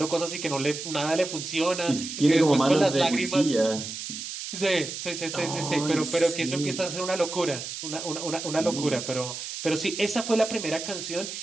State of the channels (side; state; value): right; noise; hiss, 7 dB below the sound